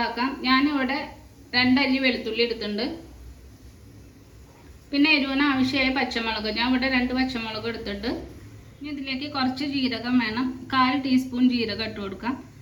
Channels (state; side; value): identical; both; correlation 1.00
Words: ഞാനിവിടെ 2 അല്ലി വെളുത്തുള്ളി എടുത്തിട്ടുണ്ട്. പിന്നെ എരിവിന് ആവശ്യമായ പച്ചമുളക്, ഞാൻ ഇവിടെ 2 പച്ചമുളക് എടുത്തിട്ടുണ്ട്. ഇനി ഇതിലേക്ക് കുറച്ച് ജീരകം വേണം. 1/4 ടീസ്പൂൺ ജീരകം ഇട്ട് കൊടുക്കാം.